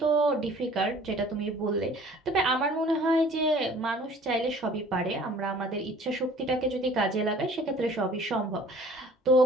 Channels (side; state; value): both; normal; correlation 0.51